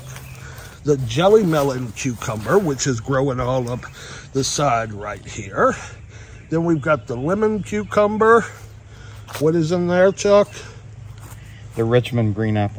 The jelly melon cucumber, which is growing all up the side right here. Then we've got the lemon cucumber. What is in there, Chuck? The Richmond green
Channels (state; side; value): identical; both; correlation 1.00